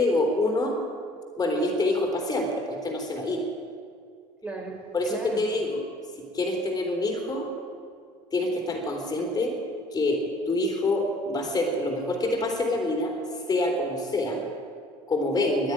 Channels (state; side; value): normal; both; correlation 0.56